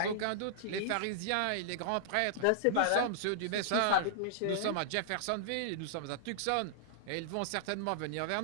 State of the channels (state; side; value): different; both; correlation -0.02